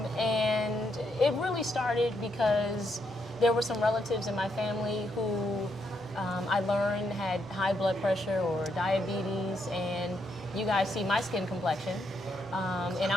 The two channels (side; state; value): both; normal; correlation 0.78